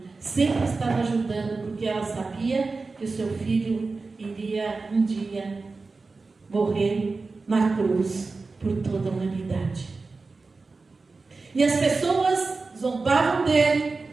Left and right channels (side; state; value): left; quieter; 3.9 dB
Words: sempre estava ajudando, porque ela sabia que o seu filho iria um dia morrer na cruz por toda a humanidade. E as pessoas zombavam dele,